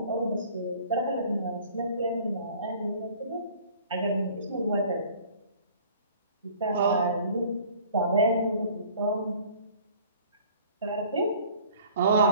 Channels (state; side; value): inverted; both; correlation -0.50